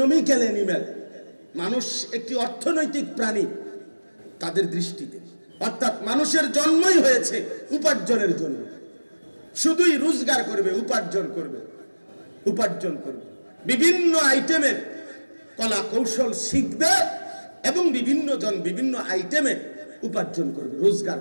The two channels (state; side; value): inverted; both; correlation -1.00